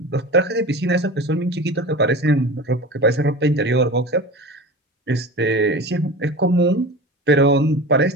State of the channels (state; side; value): normal; both; correlation 0.33